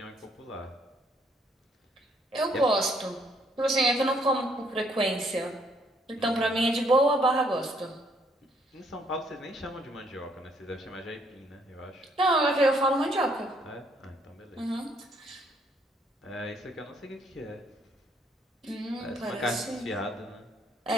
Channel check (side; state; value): both; normal; correlation 0.68